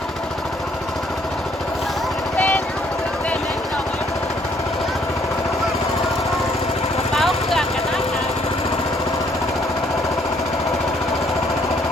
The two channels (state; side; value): normal; both; correlation 0.66